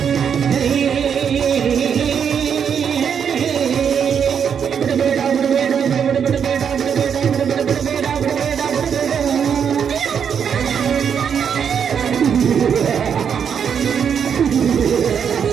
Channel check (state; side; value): quieter; left; 7.5 dB